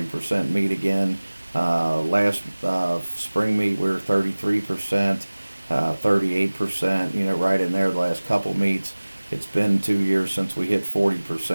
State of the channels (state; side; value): inverted; both; correlation -1.00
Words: meet again. Last spring meet we were 33%, 38%, right in there the last couple meets. It's been 2 years since we hit